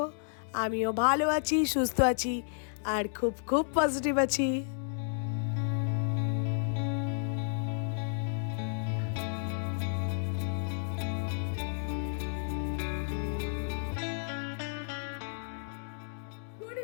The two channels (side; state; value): right; silent; 56 dB below the other